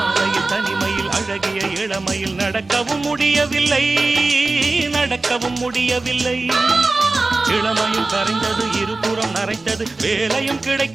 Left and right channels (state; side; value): quieter; left; 3.3 dB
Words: தனிமையில் அழகிய இளமையில் நடக்கவும் முடியவில்லை நடக்கவும் முடியவில்லை. இளமையும் கரைந்தது, இருபுறம் நரைத்தது, வேலையும்